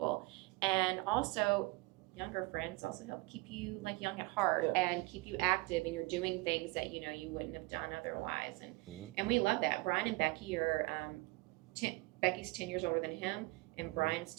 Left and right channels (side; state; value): left; quieter; 23.4 dB